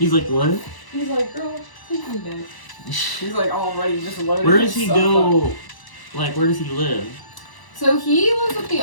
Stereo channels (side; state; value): right; late; 1.0 ms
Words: like, what? He's like, girl, take me back. He's like already just loaded. Where does he go? Up. Like, where does he live? So he lives with the